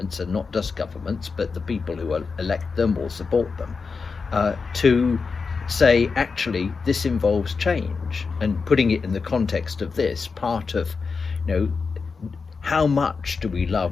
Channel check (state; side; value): quieter; right; 4.9 dB